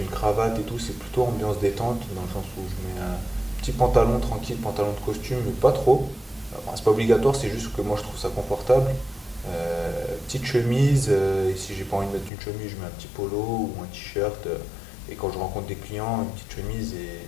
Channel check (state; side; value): drops out; right; at 12.3 s